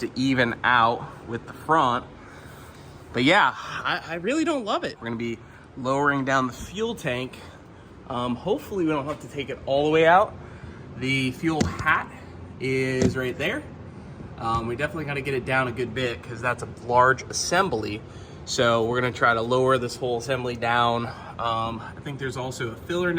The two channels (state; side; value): identical; both; correlation 1.00